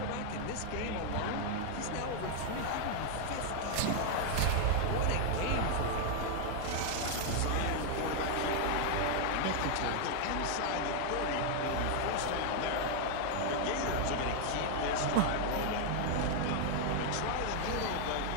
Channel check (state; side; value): different; both; correlation 0.00